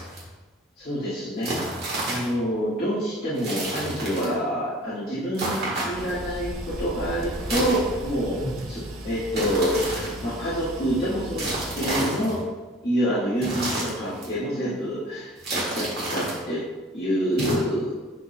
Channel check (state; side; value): normal; both; correlation 0.45